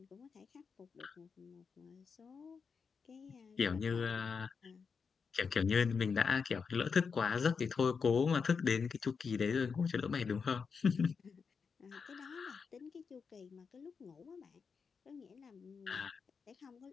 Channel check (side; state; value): right; quieter; 5.6 dB